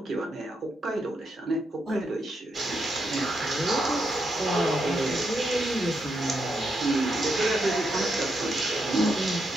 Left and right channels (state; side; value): normal; both; correlation 0.81